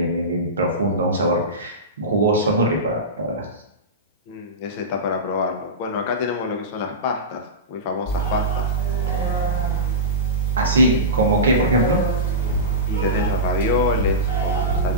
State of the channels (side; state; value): both; normal; correlation -0.17